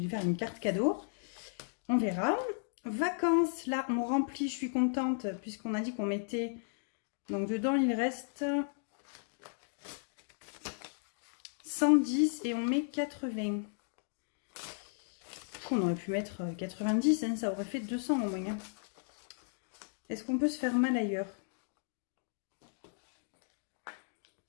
faire une carte cadeau. On verra. Vacances, là on remplit, je suis contente, puisqu'on a dit qu'on mettait... Donc dedans il reste 110 et on met 80. On aurait pu mettre 90, hein, ça aurait fait 200 au moins. Hein. Est-ce qu'on peut se faire mal ailleurs?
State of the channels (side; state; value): right; silent; digital silence